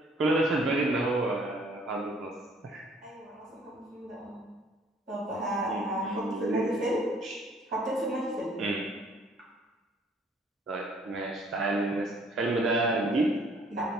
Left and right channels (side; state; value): both; normal; correlation 0.60